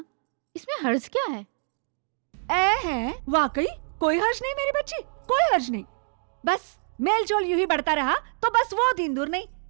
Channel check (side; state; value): left; silent; digital silence